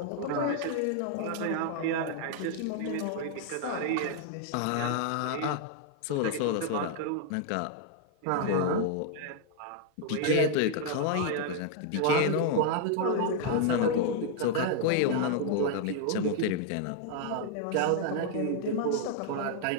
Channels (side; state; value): both; different; correlation 0.00